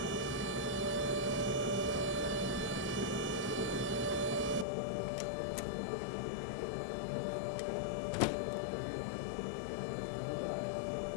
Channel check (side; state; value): right; drops out; at 4.7 s